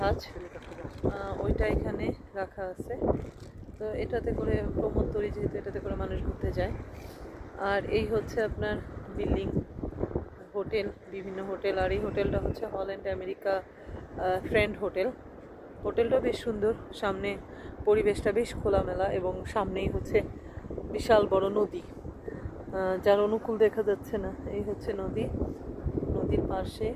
ওইটা এখানে রাখা আছে। তো এটাতে করে প্রমোদতরী, যেহেতু এটাতে করে মানুষ ঘুরতে যায়। আর এই হচ্ছে আপনার বিল্ডিং, হোটেল, বিভিন্ন হোটেল। আর এই হোটেলটা হচ্ছে হল্যান্ড আমেরিকা ফ্রেন্ড হোটেল। হোটেলটা বেশ সুন্দর, সামনে পরিবেশটা বেশ খোলামেলা এবং সামনেই হচ্ছে বিশাল বড় নদী, যার অনুকূল দেখা যাচ্ছে না। এই হচ্ছে নদীর পাশে।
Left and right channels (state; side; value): identical; both; correlation 1.00